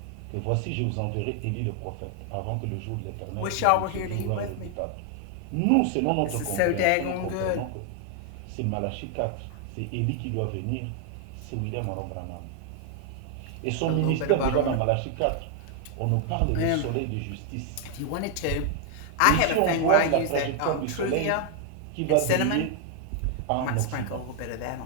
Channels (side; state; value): both; different; correlation 0.00